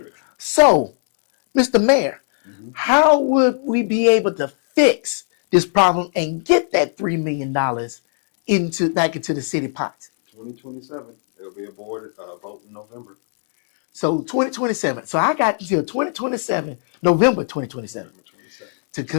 So, Mr. Mayor, how would we be able to fix this problem and get that $3 million back into the city pots? 2027. There'll be a board vote in November. So 2027. So I got until 2027, November 2027, November 27. to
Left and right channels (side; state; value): right; silent; digital silence